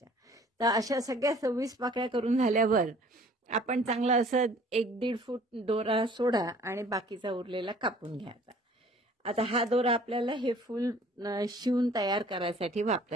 तर अशा सगळ्या 26 पाकळ्या करून झाल्यावर आपण चांगलं असं 1-1.5 फूट दोरा सोडा आणि बाकीचा उरलेला कापून घ्यायचा. आता हा दोरा आपल्याला हे फूल शिवून तयार करायसाठी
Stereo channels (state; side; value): normal; both; correlation 0.53